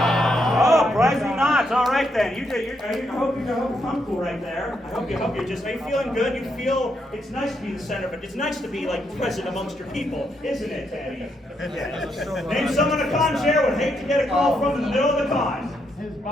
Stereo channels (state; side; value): normal; both; correlation 0.78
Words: surprisingly not. All right then. I hope you're comfortable right there. I hope you're just. Are you feeling good? You feel it's nice to be the center, but it's nice to be like present amongst your people, isn't it, Tani? Name someone a con chair would hate to get a call from in the middle of the con. His